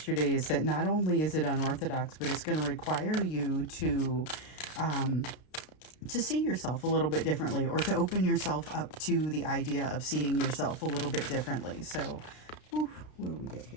is that not only is it unorthodox, but it's going to require you to see yourself a little bit differently, or to open yourself up to the idea of seeing yourself a little bit differently. So, what do we get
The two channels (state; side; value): late; right; 33 ms